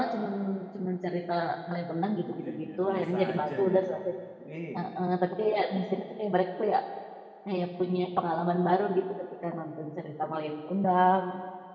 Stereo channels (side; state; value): both; identical; correlation 1.00